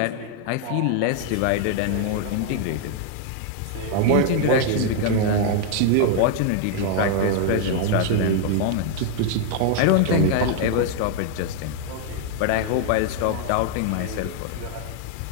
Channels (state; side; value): different; both; correlation 0.00